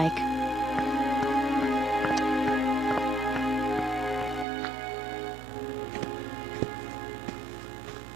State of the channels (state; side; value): drops out; left; at 4.5 s